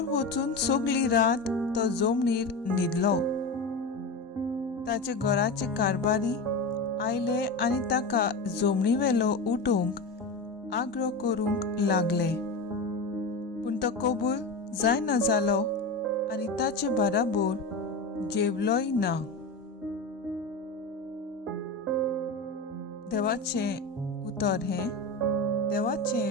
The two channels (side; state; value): right; quieter; 3.1 dB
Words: वचून सगळी रात तो जमनीर न्हिदलो. ताचे घराचे कारबारी आयले आनी ताका जमनीवेलो उठोवंक आग्रो करूंक लागले, पूण तो कबूल जायना जालो आनी ताचे बाराबर जेवलोय ना. देवाचें उतर हें